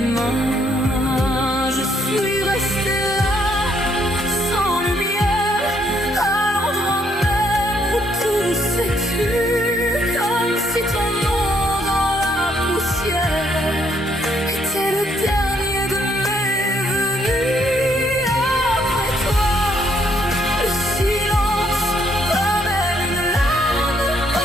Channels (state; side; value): normal; both; correlation 0.70